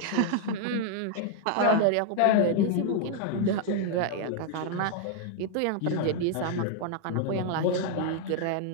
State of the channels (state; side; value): different; both; correlation 0.00